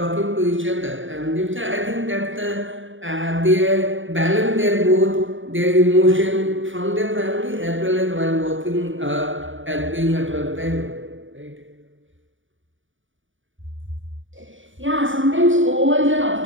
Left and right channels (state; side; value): late; left; 0.57 ms